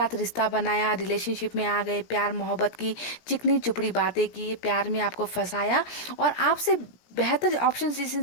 रिश्ता बनाया, रिलेशनशिप में आ गए, प्यार मोहब्बत की चिकनी चुपड़ी बातें की, प्यार में आपको फंसाया और आपसे बेहतर ऑप्शंस इस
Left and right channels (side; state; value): right; late; 17 ms